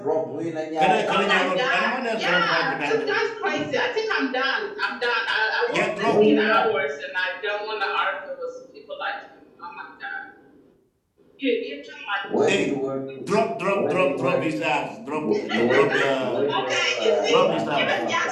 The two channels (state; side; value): identical; both; correlation 1.00